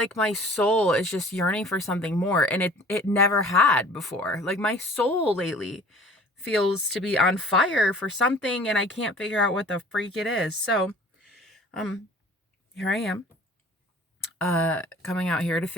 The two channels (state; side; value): normal; both; correlation 0.48